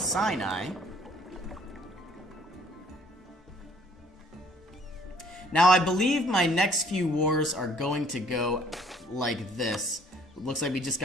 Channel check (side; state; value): both; normal; correlation 0.59